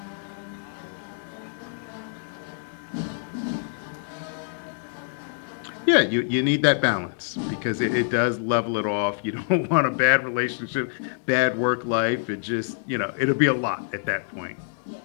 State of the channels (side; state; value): right; silent; digital silence